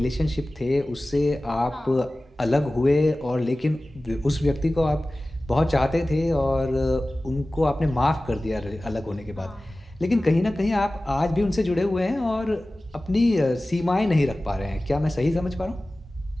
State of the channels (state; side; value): normal; both; correlation 0.97